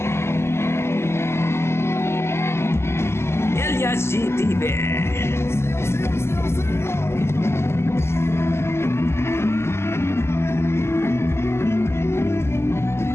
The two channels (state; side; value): late; right; 0.12 ms